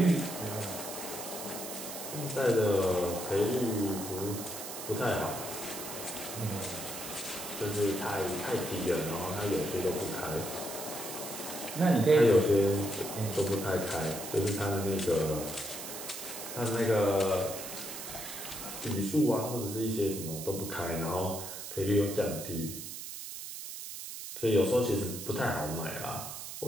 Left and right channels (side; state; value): right; noise; hiss, 8 dB below the sound